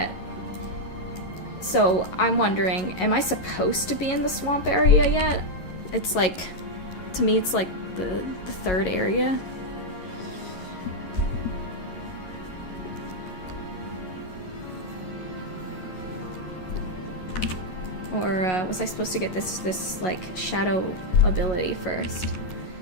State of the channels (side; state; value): right; late; 11 ms